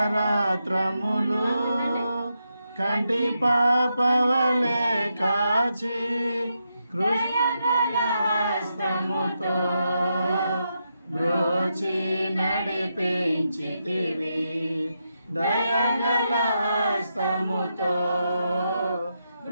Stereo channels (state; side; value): inverted; both; correlation -0.84